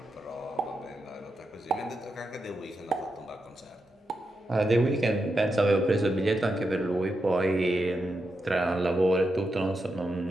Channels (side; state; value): both; normal; correlation 0.86